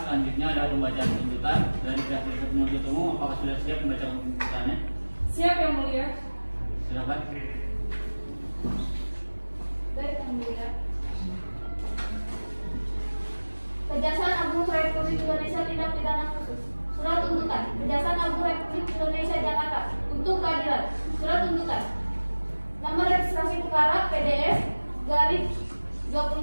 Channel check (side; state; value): both; inverted; correlation -1.00